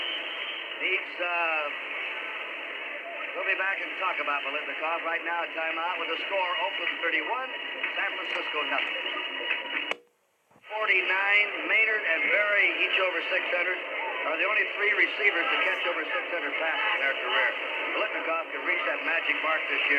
needs, we'll be back and talk about Biletnikoff. Right now, a timeout with the score, Oakland 31, San Francisco nothing. 49, Maynard and Berry, each over 600, are the only 3 receivers to catch over 600 passes in their career. Biletnikoff can reach that magic mark this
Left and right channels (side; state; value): both; identical; correlation 1.00